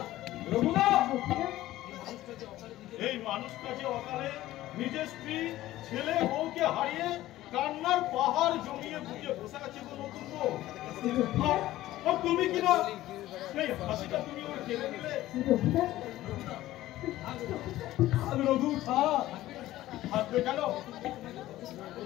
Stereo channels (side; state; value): right; quieter; 15.4 dB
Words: রঘুনাথ। এই মানুষটা যে অকালে নিজের স্ত্রী ছেলে বউকে হারিয়ে কান্নার পাহাড় জমিয়ে বুঝিয়ে বসে আছে গো নতুন বউ। আর তুমি কিনা সেই হাসিটা তুমি ওর কেড়ে নিলে। রঘু থাকবে কেন?